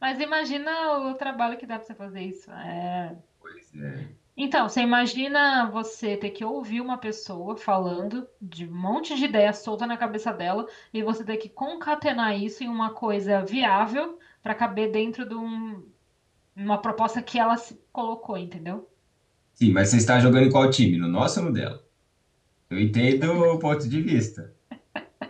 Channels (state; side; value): identical; both; correlation 1.00